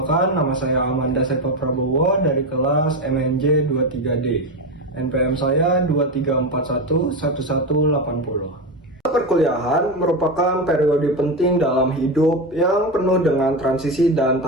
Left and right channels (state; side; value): normal; both; correlation 0.16